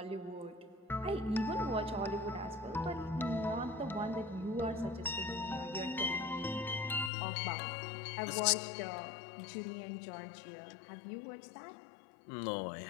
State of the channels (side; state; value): right; drops out; at 7.1 s